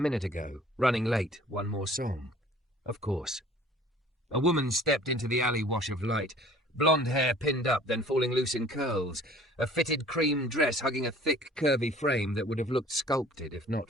ago, running late, one more song. Of course. A woman stepped into the alley wash of light, blonde hair pinned up, then falling loose in curls, a fitted cream dress hugging a thick, curvy frame that would have looked sculpted if not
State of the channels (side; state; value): both; normal; correlation 0.50